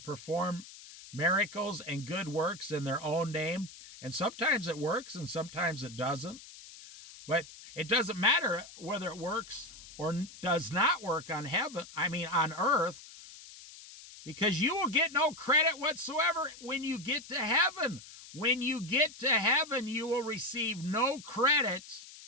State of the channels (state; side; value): noise; left; hiss, 17 dB below the sound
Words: miracles and good works in their own name. And sometimes it works and sometimes it doesn't. But it doesn't matter whether it works or does not work on earth, because you will get no credit whatsoever when you get to heaven. When you get to heaven, you will receive no credit.